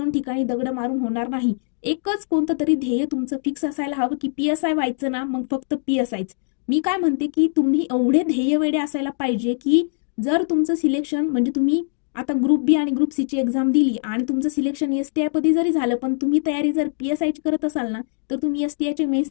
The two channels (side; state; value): right; silent; digital silence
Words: ठिकाणी दगड मारून होणार नाही। एकच कोणतं तरी ध्येय तुमचं फिक्स असायला हवं की पीएसआय व्हायचं ना, मग फक्त पीएसआयच। मी काय म्हणते की तुम्ही एवढे ध्येय वेडे असायला पाहिजे की जर तुमचं सिलेक्शन म्हणजे तुम्ही आता ग्रुप बी आणि ग्रुप सी ची एक्झाम दिली आणि तुमचं सिलेक्शन एसटीआय पदी जरी झालं पण तुम्ही तयारी जर पीएसआय ची करत असाल ना तर तुम्ही एसटीआयच्या